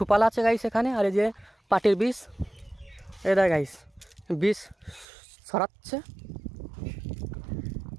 আছে গাইস এখানে। আর এই যে পাটের বীজ, এটা গাইস বীজ ছড়াচ্ছে।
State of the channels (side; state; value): left; drops out; at 5.1 s